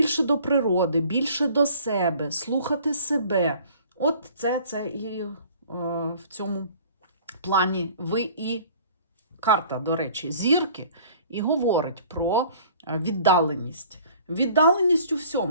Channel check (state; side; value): inverted; both; correlation -0.51